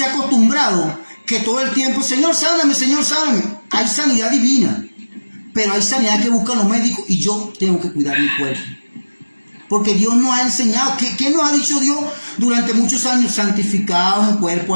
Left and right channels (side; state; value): both; inverted; correlation -1.00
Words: ha acostumbrado que todo el tiempo, Señor, sáname, Señor, sáname. Hay sanidad divina, pero hay sanidad que buscan los médicos, y yo tengo que cuidar mi cuerpo. Porque Dios nos ha enseñado. ¿Qué nos ha dicho Dios durante muchos años? Santificados en cuerpo,